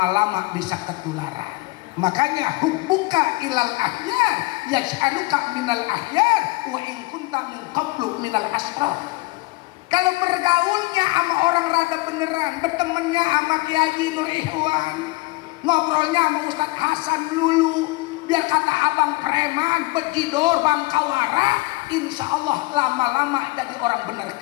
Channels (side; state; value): right; quieter; 23.0 dB